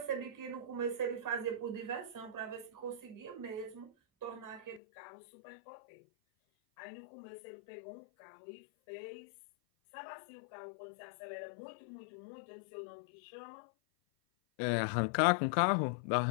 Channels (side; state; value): right; drops out; at 4.8 s